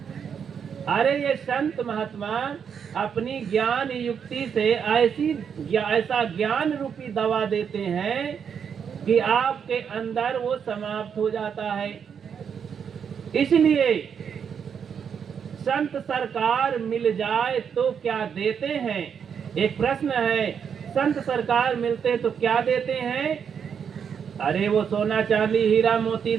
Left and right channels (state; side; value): quieter; left; 7.3 dB